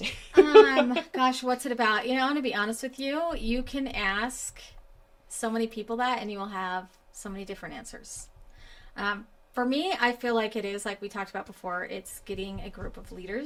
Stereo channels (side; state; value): both; identical; correlation 1.00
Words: Gosh, what's it about? I'm going to be honest with you. You can ask so many people that, and you will have so many different answers. For me, I feel like it is, like we talked about before, it's getting a group of